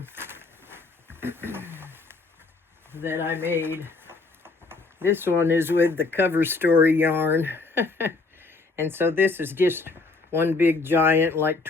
that I made. This one is with the Cover Story yarn. And so this is just one big giant, like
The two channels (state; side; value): quieter; right; 3.8 dB